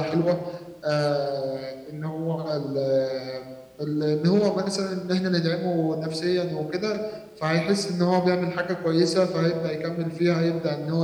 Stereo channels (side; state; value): both; identical; correlation 1.00